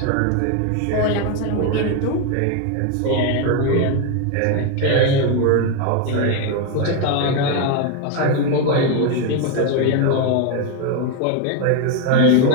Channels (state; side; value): different; both; correlation 0.01